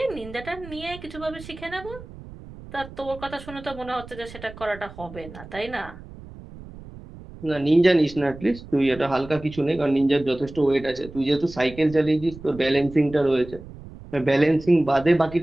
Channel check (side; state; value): right; noise; rumble, 16 dB below the sound